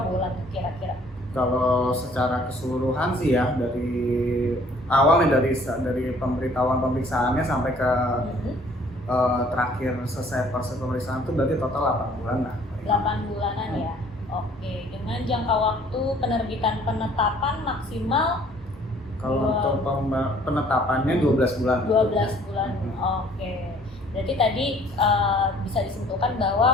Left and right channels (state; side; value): normal; both; correlation 0.57